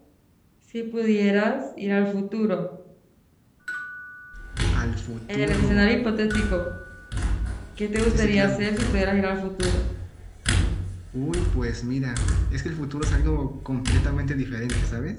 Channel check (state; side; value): identical; both; correlation 1.00